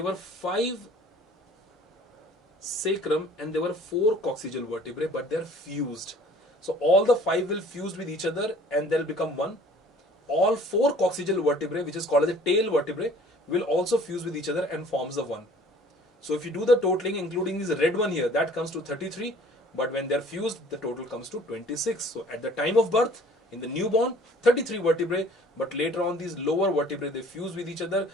were 5 sacrum and there were 4 coccygeal vertebrae, but they're fused. So all the 5 will fuse with each other and they'll become one. All 4 coccygeal vertebrae, which is called as a tail vertebrae, will also fuse with each other and forms the one. So if you do the totaling, including this red one here, that comes to 33. But when they're fused, the total comes to 26. So at the time of birth, in the newborn, 33 vertebrae. But later on, these lower vertebrae, they fuse with each other,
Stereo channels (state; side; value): normal; both; correlation 0.52